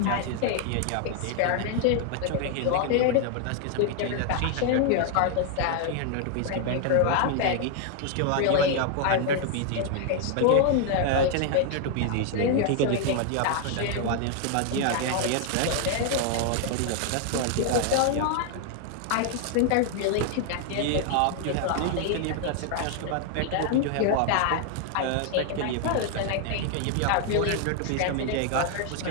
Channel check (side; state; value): both; different; correlation 0.00